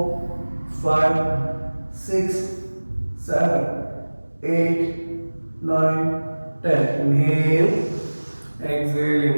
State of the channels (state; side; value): inverted; both; correlation -1.00